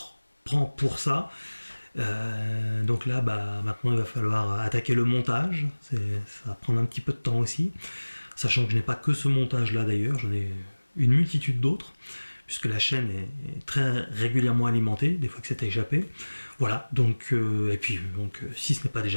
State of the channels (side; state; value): both; inverted; correlation -1.00